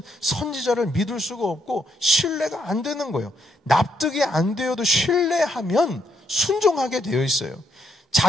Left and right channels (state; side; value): normal; both; correlation 0.75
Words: 선지자를 믿을 수가 없고 신뢰가 안 되는 거예요. 납득이 안 되어도 신뢰하면 순종하게 되어 있어요.